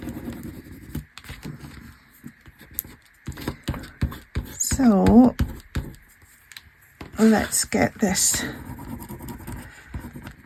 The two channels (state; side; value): identical; both; correlation 1.00